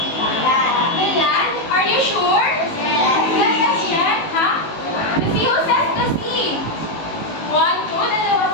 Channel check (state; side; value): late; right; 18 ms